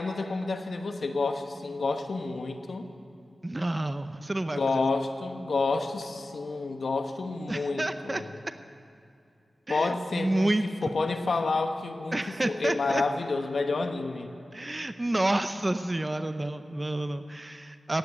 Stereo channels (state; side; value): normal; both; correlation 0.94